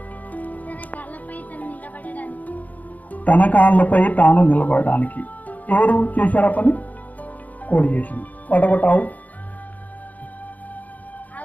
తన కాళ్ళపై తాను నిలబడడానికి. ఎవరు చేశారా పని? కోడి చేసింది. వడగొట్టావు.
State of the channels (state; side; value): late; right; 0.077 ms